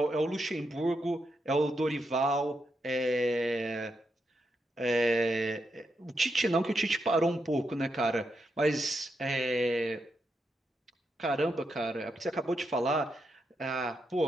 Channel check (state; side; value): normal; both; correlation 0.83